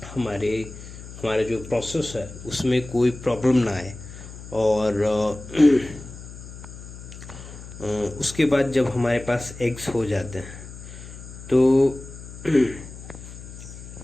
हमारे जो प्रोसेस है उसमें कोई प्रॉब्लम ना आए। और उसके बाद जब हमारे पास एग्स हो जाते हैं तो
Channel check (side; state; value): left; noise; hum, 14 dB below the sound